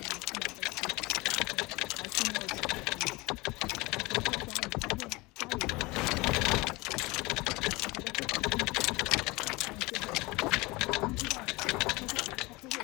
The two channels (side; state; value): right; quieter; 23.2 dB